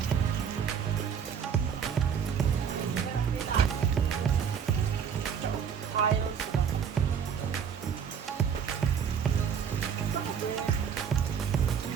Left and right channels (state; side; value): quieter; left; 7.5 dB